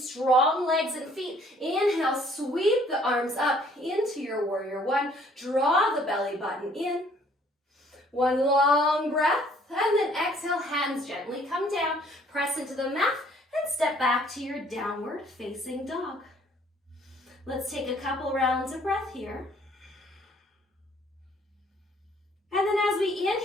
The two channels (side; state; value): both; normal; correlation 0.60